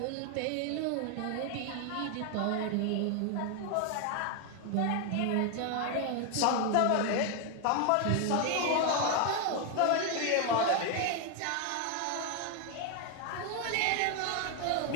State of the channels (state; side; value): different; both; correlation 0.01